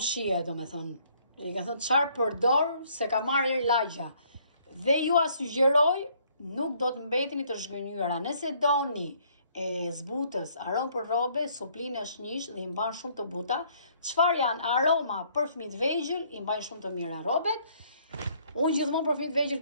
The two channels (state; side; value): inverted; both; correlation -0.64